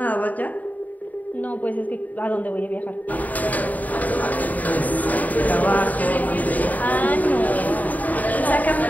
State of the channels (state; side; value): late; right; 0.076 ms